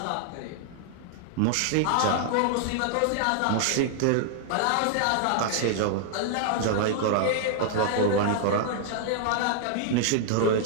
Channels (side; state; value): both; different; correlation -0.01